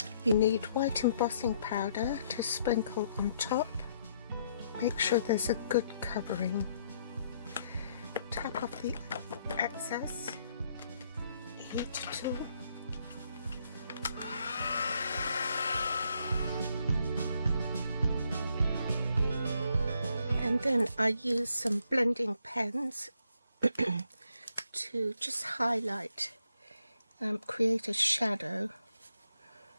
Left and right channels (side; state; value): both; inverted; correlation -0.71